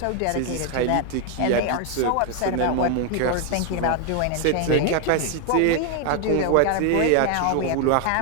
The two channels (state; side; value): different; both; correlation 0.01